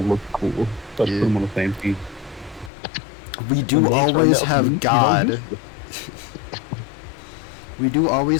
looked cool. Let's put them on the same team. We do always have God. We do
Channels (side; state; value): right; drops out; at 2.7 s